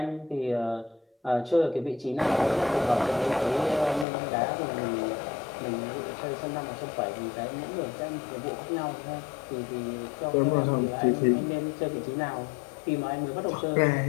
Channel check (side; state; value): right; drops out; at 4.0 s